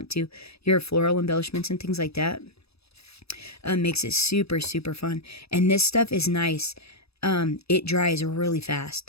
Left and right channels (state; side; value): late; right; 0.78 ms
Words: to. Your floral embellishments and things like that. Makes it super, super fun. And this stuff is nice. It dries really